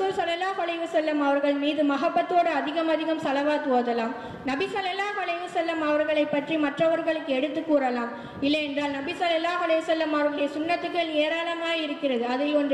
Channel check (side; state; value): both; identical; correlation 1.00